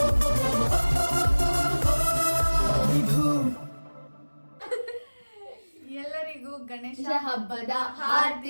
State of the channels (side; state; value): both; inverted; correlation -1.00